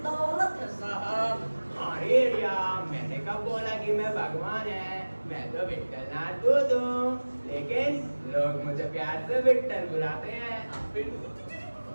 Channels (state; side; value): inverted; both; correlation -1.00